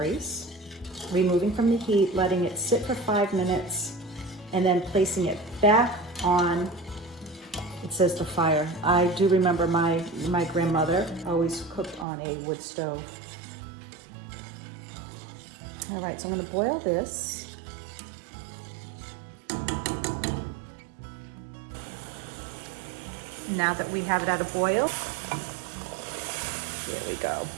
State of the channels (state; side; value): drops out; left; at 12.1 s